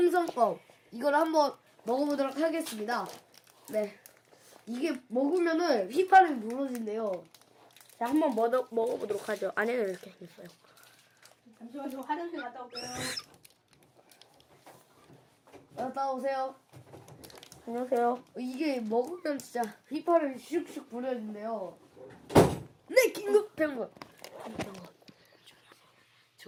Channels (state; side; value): identical; both; correlation 1.00